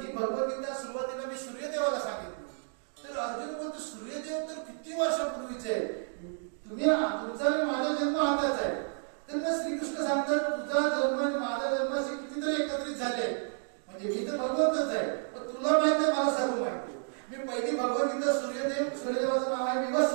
ही भगवद्गीता सुरुवातीला मी सूर्यदेवाला सांगितलं. तर अर्जुन बोलतो सूर्यदेव तर किती वर्षापूर्वीचे आहे, तुमचा आणि माझा जन्म हाताच आहे. तर मग श्रीकृष्ण सांगतात तुझा जन्म आणि माझा जन्म असे कितीतरी एकत्रित झाले, म्हणजे मी तर भगवंतच आहे, पण तुला माहिती आहे, मला सर्व माहिती आहे. मी पहिली भगवद्गीता सूर्यदेवाचं नाव आहे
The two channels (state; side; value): silent; left; digital silence